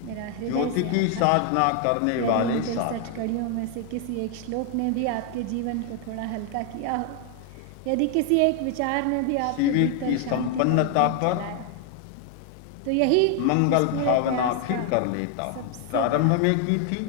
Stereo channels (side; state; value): both; different; correlation 0.00